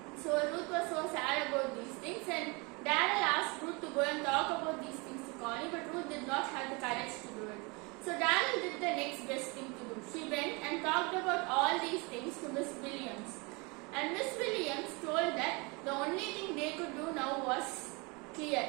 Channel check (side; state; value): left; quieter; 28.5 dB